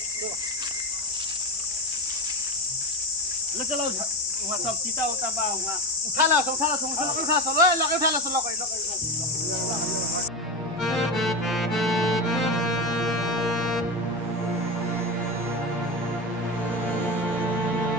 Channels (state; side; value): normal; both; correlation 0.19